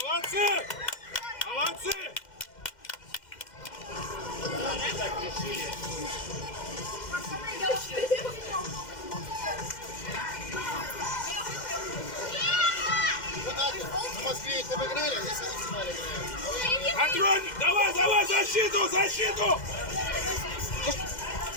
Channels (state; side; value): late; right; 2.1 ms